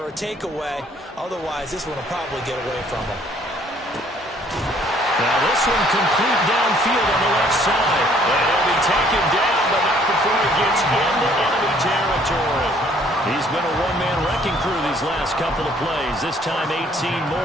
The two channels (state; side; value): normal; both; correlation 0.61